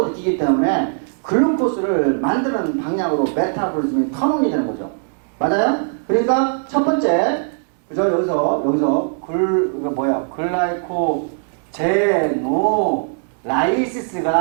느끼기 때문에 글루코스를 만드는 방향으로 메타볼리즘이 턴온이 되는 거죠. 맞아요? 그러니까 첫 번째 그죠? 여기서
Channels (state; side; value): silent; left; digital silence